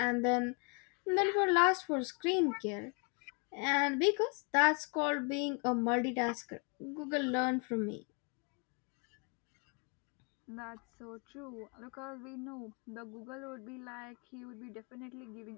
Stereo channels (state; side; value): quieter; right; 35.0 dB